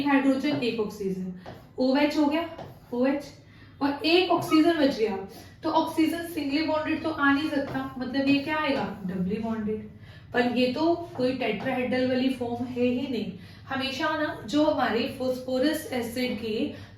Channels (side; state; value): both; identical; correlation 1.00